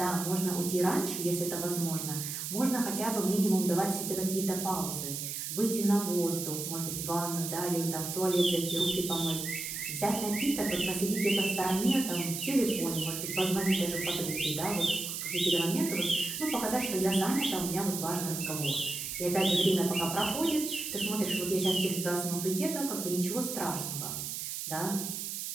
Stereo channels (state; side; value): noise; right; hiss, 5 dB below the sound